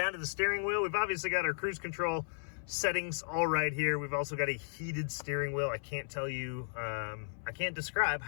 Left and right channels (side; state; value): right; silent; 55 dB below the other